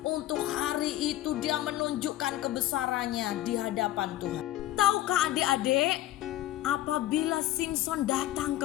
Untuk hari itu dia menunjukkan kebesarannya di hadapan Tuhan. Tahukah adik-adik, apabila Simson datang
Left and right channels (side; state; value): right; quieter; 14.6 dB